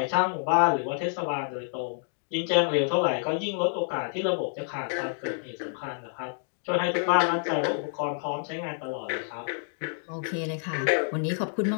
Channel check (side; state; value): right; silent; digital silence